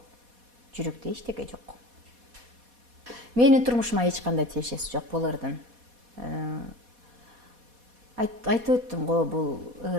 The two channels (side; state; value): left; late; 4.2 ms